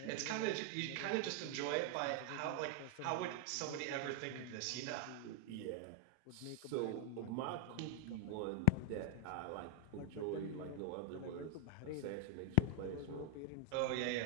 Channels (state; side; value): different; both; correlation 0.00